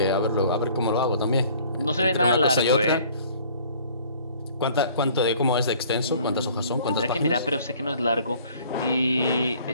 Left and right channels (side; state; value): both; inverted; correlation -0.54